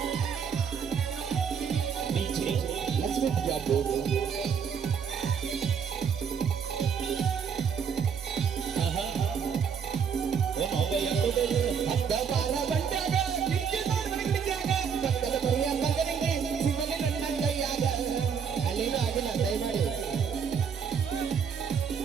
ಹತ್ತ ಬಾರ ಬಂಟಾಗ ಪಕ್ಕದ ಬರಿಯ ಮಗನಿಗೆ ಸಿಗಲಿ ನನ್ನ ಕೈಯಾಗ ಅಲ್ಲಿನೂ ಆಗಿಲ್ಲ ದಯಮಾಡಿ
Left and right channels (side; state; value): left; quieter; 6.9 dB